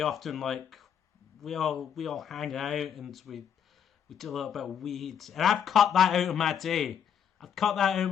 often like we all hang out and we do a little bit of weeds, and I've cut that out of my day. I've cut that out of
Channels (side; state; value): right; quieter; 8.4 dB